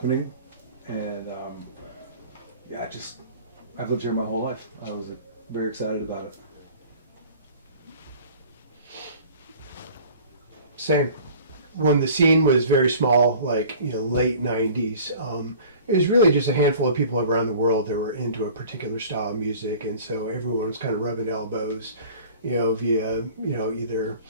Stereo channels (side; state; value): both; inverted; correlation -0.46